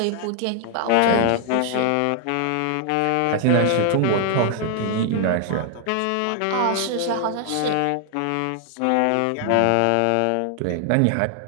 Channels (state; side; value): different; both; correlation 0.00